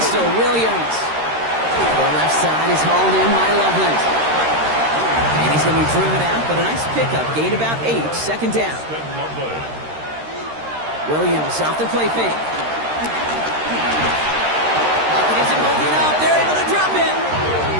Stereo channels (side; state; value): left; late; 13 ms